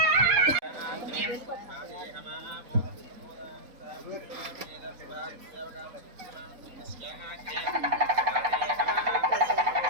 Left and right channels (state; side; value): late; left; 4.2 ms